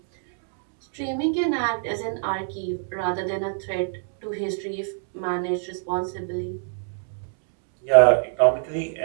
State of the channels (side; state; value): left; silent; digital silence